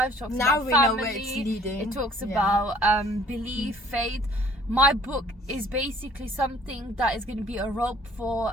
talks now about we family, know where it's leading. It talks about belief, faith. My book is basically something that is going to be a rope for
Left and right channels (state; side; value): normal; both; correlation 0.56